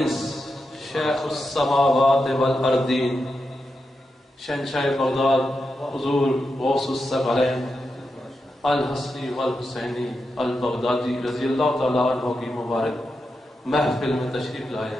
شیخ السماوات والارضین، شہنشاہ بغداد حضور غوث الثقلین الحسنی والحسینی البغدادی رضی اللہ تعالیٰ عنہ کی مبارک محفل میں تشریف لائے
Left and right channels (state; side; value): normal; both; correlation 0.87